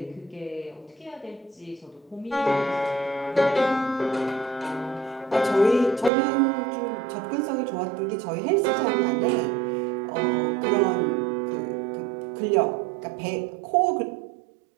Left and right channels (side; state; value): left; drops out; at 6.1 s